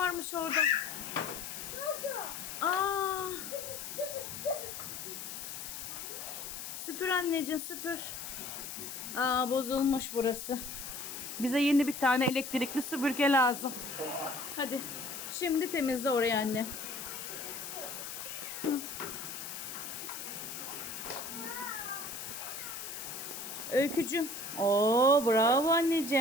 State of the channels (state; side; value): noise; left; hiss, 8 dB below the sound